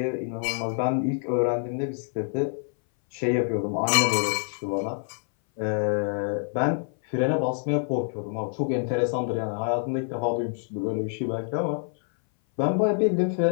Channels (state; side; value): silent; right; 60 dB below the other